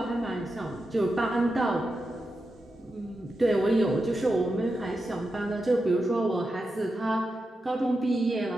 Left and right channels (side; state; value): both; normal; correlation 0.89